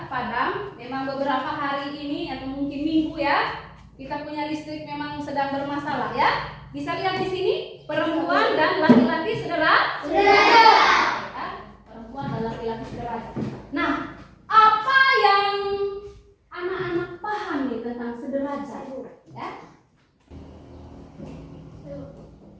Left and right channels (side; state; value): both; identical; correlation 1.00